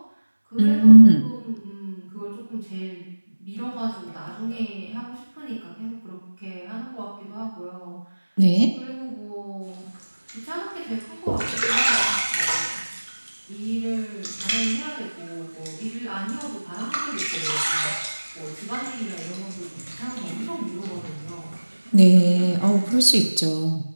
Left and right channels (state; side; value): inverted; both; correlation -1.00